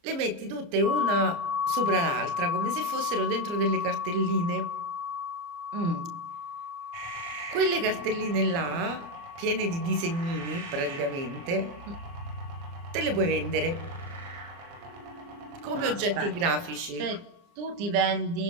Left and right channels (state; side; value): late; left; 29 ms